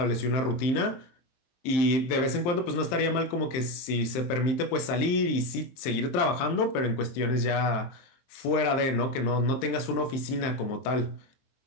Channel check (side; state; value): right; late; 23 ms